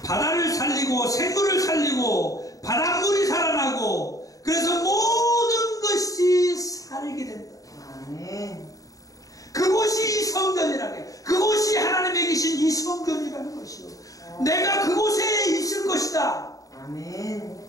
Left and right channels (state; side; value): late; right; 0.17 ms